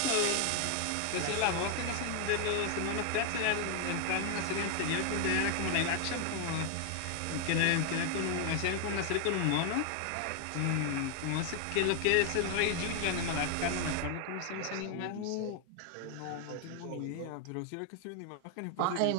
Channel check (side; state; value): both; different; correlation 0.00